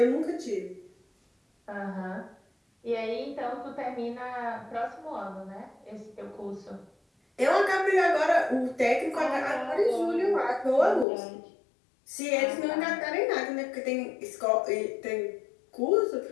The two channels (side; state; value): right; drops out; at 11.1 s